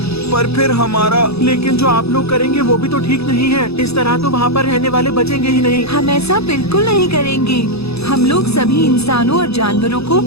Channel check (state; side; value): late; right; 0.78 ms